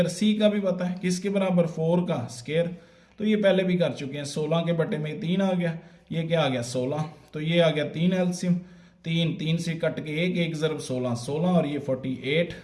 c का भी पता है किसके बराबर 4 का स्क्वायर। तो ये पहले भी कर चुके हैं। 16 के बटे में 3 आ गया, ये क्या आ गया 16। तो ये आ गया 3 एलसीएम, 3 से कट के 1 ज़रब 16 और ये 48।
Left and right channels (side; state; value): both; identical; correlation 1.00